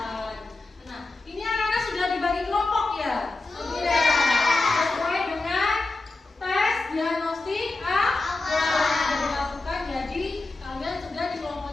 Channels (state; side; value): quieter; right; 3.2 dB